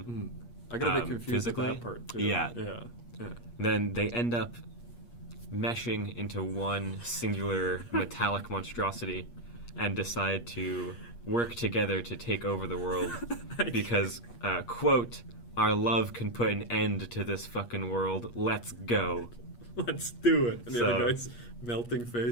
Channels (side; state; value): right; late; 8.4 ms